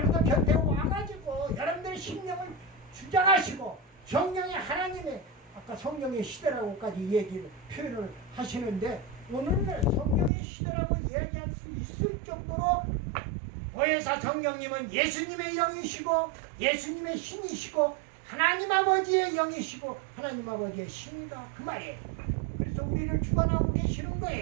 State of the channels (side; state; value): left; drops out; at 10.3 s